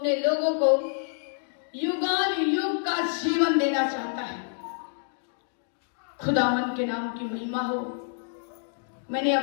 लोगों को युगान युग का जीवन देना चाहता है। खुदावन के नाम की महिमा हो। मैंने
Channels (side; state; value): right; silent; digital silence